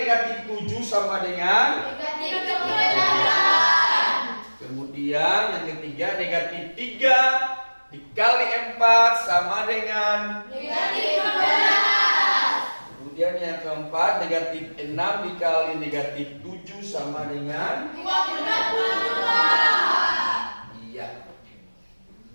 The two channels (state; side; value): inverted; both; correlation -1.00